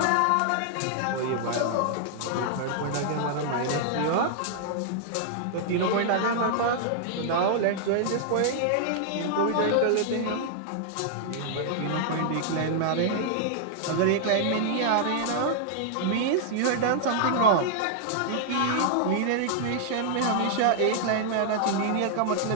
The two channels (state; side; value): different; both; correlation -0.01